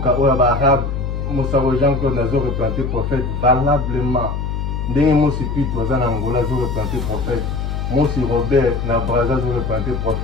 oya ba arabe Mosaro Jean-Claude nazo représenter prophète valablement ndenge mosi pitu toza na Angola zo représenter prophète mosi Robert na Brazza zo représenter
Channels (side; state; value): left; noise; hum, 3 dB below the sound